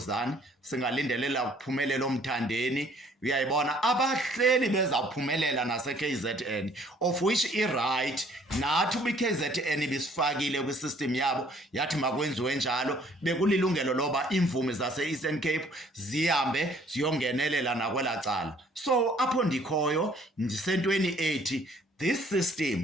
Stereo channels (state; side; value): normal; both; correlation 0.60